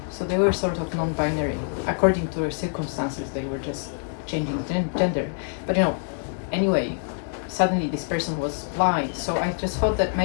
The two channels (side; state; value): right; silent; 62 dB below the other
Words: so they were sort of non-binary. According to their circumstances, they were just changing gender. But anyway, suddenly this person was blind, so I just thought that